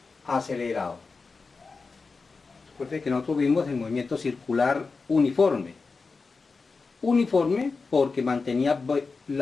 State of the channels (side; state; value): right; quieter; 4.3 dB